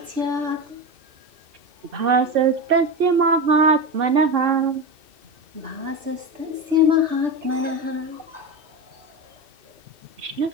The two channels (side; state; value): left; late; 2.6 ms